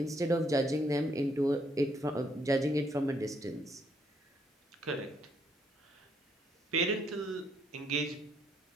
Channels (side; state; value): both; normal; correlation 0.71